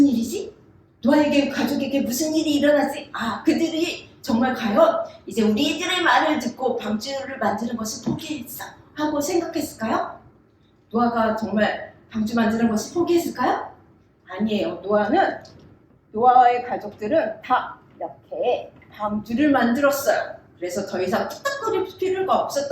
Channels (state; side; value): identical; both; correlation 1.00